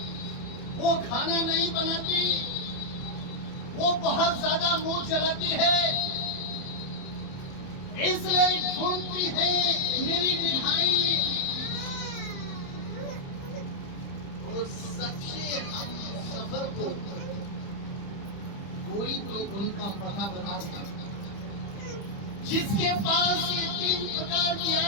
वो खाना नहीं बनाती, वो बहुत ज्यादा मुंह चलाती है। इसलिए ढूंढती है मेरी निगाहें उस सच्चे हम सफर को। कोई तो उनका पता बताता, जिसके पास ये 3 प्रकार की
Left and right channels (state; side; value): late; right; 30 ms